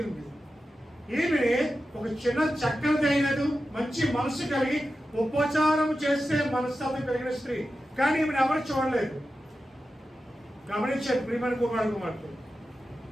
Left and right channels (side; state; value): both; normal; correlation 0.92